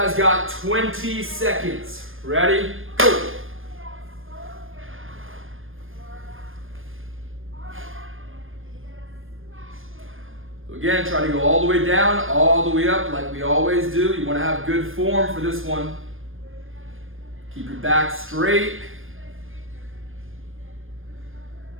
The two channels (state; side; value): late; left; 0.59 ms